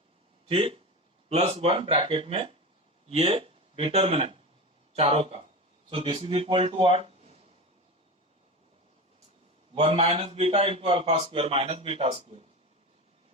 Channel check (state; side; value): normal; both; correlation 0.25